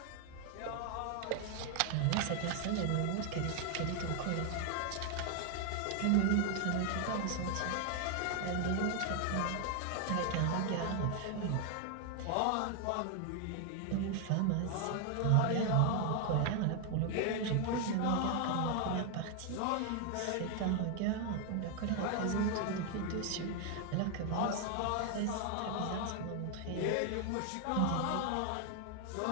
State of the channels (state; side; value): different; both; correlation 0.00